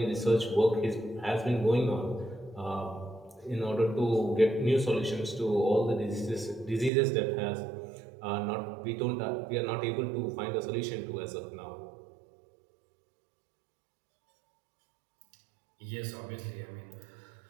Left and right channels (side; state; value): left; drops out; at 6.9 s